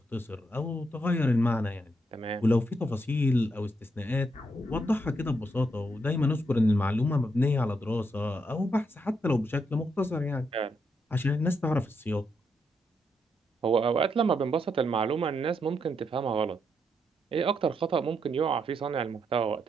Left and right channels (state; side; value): normal; both; correlation 0.79